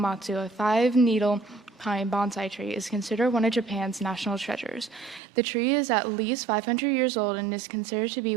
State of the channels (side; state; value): left; drops out; at 5.2 s